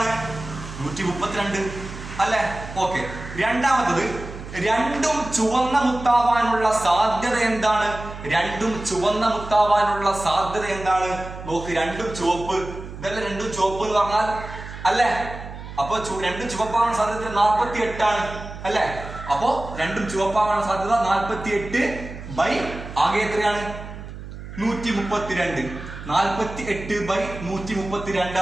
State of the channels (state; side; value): noise; right; hum, 12 dB below the sound